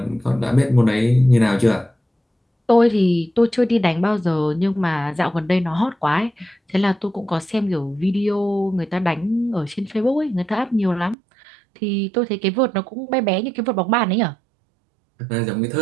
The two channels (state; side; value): drops out; left; at 11.2 s